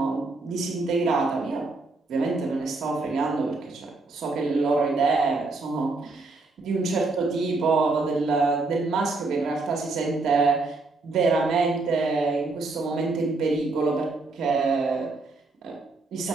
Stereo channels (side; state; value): left; quieter; 3.5 dB